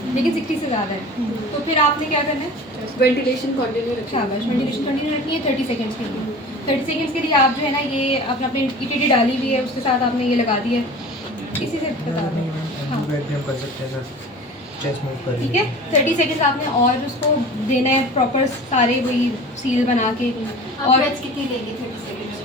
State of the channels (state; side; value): normal; both; correlation 0.39